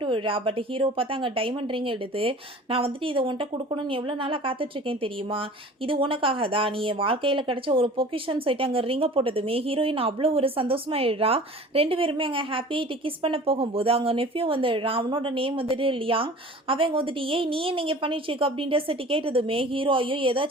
விடுறா. பட் ஹீரோ பார்த்தா அங்கே டைமண்ட் ரிங் எடுத்து, நான் வந்துட்டு இதை உன்ட்ட கொடுக்கணும்னு எவ்வளோ நாளாக காத்துட்ருக்கேன் தெரியுமா, இது உனக்காக தான், நீ என் வாழ்க்கையில் கிடைச்ச ஒரு பொக்கிஷன் சொல்லிட்டு அங்கே ரிங்கை போட்டதுமே ஹீரோயின் அவ்வளோ ஒரு சந்தோஷமாயிடுறா. 2 பேருமே அங்கே ஹாப்பியாகிட்டு கிஸ் பண்ண போகும்போது அங்கே நெஃப்யூ வந்துடுறான். அவனோட நேம் வந்துட்டு லியாங். அவங்க வந்துட்டு ஏய் நீ நீங்கள் பண்ணிட்டுருக்க அப்படின்ற சொல்லிட்டு கேட்டதுமே ஹீரோ ஐயோ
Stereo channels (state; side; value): normal; both; correlation 0.43